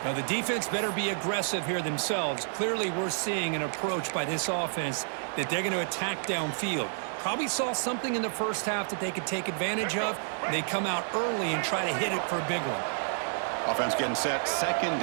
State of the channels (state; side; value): silent; left; digital silence